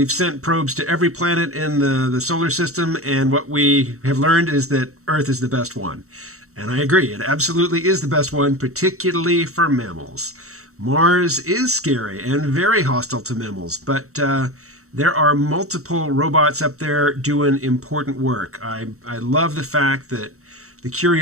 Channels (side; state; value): left; late; 0.64 ms